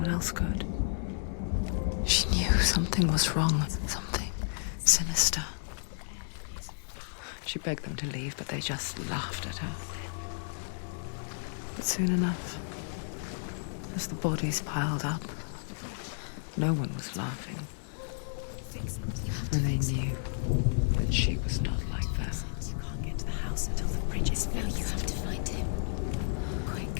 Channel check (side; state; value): right; silent; digital silence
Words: else could. She knew something was wrong, something sinister. She begged them to leave, but they just laughed at her. But soon enough, as the bodies piled up, no one was laughing. And they knew that she was not like them. Can't get to the house until the bridge is Now you have to find him. Quick,